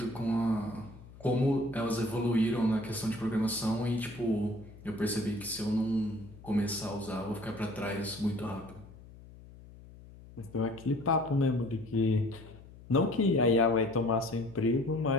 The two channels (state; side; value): noise; left; hum, 19 dB below the sound